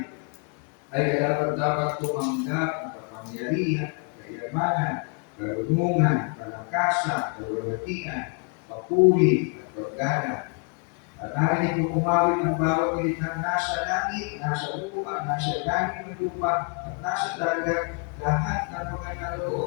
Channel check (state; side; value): quieter; right; 36.3 dB